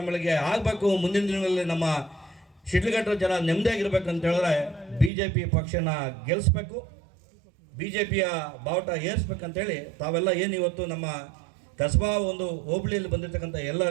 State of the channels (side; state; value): left; drops out; at 5.1 s